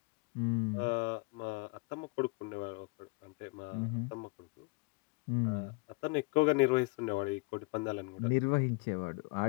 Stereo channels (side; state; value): right; quieter; 27.8 dB